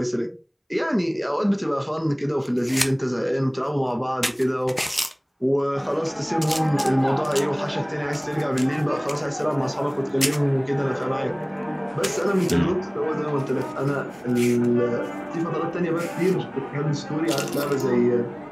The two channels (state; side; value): identical; both; correlation 1.00